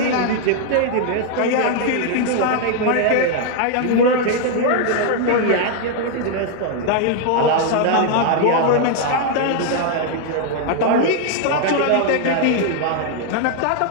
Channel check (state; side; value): different; both; correlation 0.00